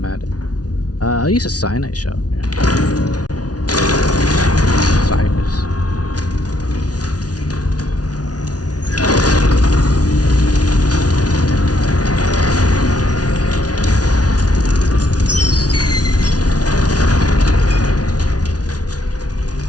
at it. I'll use a cyanide shell. Yeah. Cyrus.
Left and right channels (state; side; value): late; right; 0.68 ms